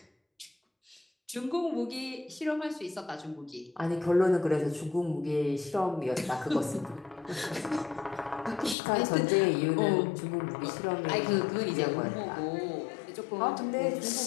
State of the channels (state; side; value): drops out; right; at 8.8 s